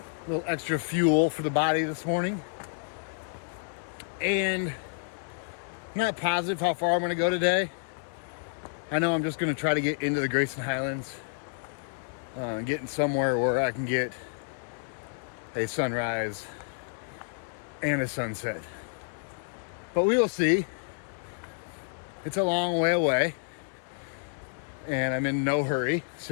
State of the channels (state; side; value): silent; right; 58 dB below the other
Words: A little extra fuel for the body this morning. And I'm not positive how far I'm going to go today. I know I'm just going to try to get into the Grayson Highlands, getting somewhere where I can get a sunrise and a sunset. But we will see. It's a long way away, and I'm in no hurry,